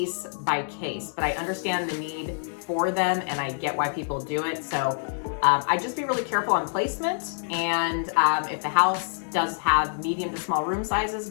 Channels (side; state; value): right; silent; digital silence